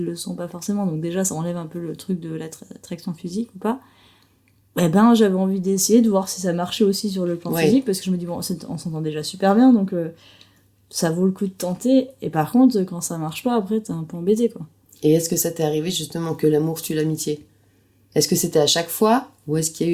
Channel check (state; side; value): identical; both; correlation 1.00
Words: le sont pas forcément. Donc, déjà, ça enlève un peu le truc de l'attraction physique ou pas. Eh ben, j'avais envie d'essayer de voir si ça marchait aussi sur le plan physique parce que je me dis, bon, on s'entend déjà super bien donc ça vaut le coup de tenter. Et par contre, quand ça marche pas, après, t'es un peu embêté, quoi. Et est-ce que ça t'est arrivé justement que l'amour tue l'amitié? Est-ce que c'était à chaque fois ou est-ce qu'il y a